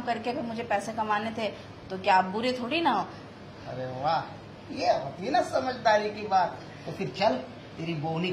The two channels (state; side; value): identical; both; correlation 1.00